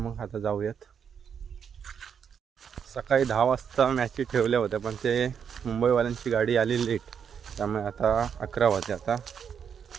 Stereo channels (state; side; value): quieter; left; 7.5 dB